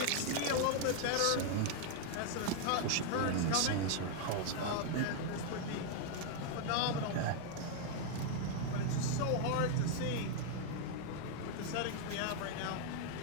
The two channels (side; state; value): both; different; correlation 0.00